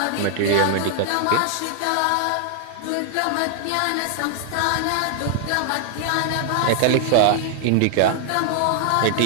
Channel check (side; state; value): both; different; correlation 0.00